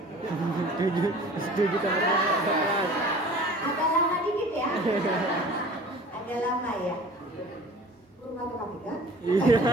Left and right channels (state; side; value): normal; both; correlation 0.44